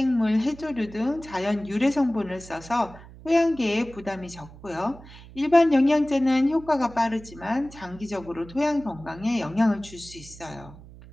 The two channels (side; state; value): right; noise; hum, 19 dB below the sound